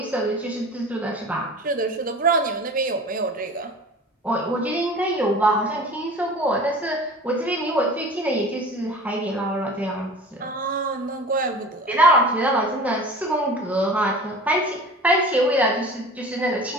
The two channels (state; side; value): normal; both; correlation 0.40